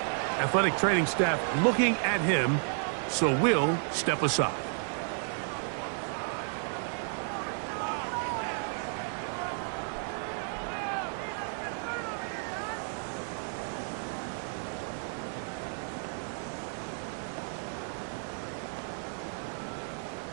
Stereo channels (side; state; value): left; silent; 56 dB below the other